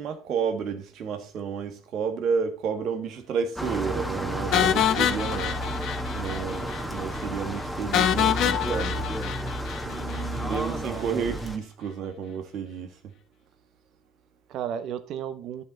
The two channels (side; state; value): both; normal; correlation 0.55